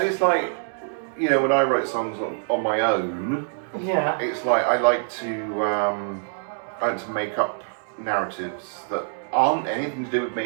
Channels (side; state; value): left; silent; digital silence